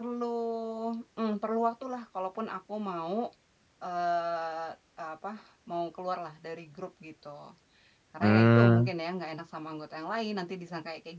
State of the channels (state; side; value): identical; both; correlation 1.00